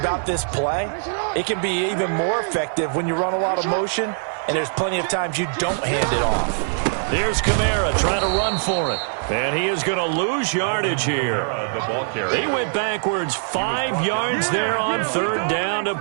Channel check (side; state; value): left; silent; digital silence